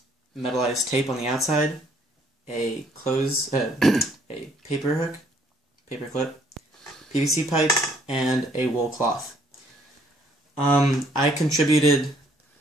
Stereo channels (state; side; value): normal; both; correlation 0.64